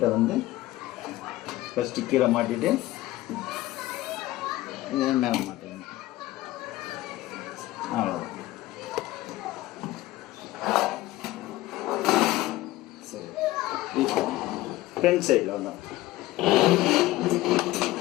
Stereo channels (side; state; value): right; quieter; 17.1 dB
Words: வந்து ஃபஸ்ட்டு கீழே மாட்டிட்டு இதை மேலே மாட்டிடணும். அவ்வளோதான். சரி, இப்போ ஃப்ரண்ட் சைடில் வந்தோம்.